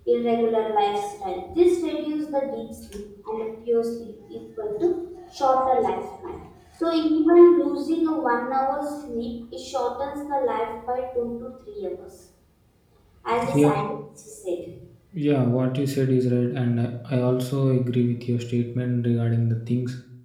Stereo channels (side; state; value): both; identical; correlation 1.00